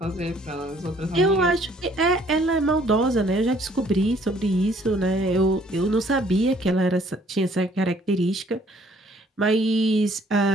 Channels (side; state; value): both; normal; correlation 0.61